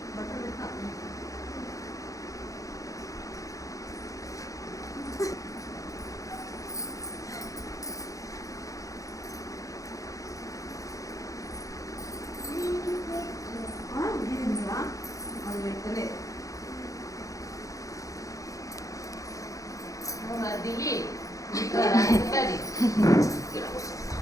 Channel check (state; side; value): late; right; 0.16 ms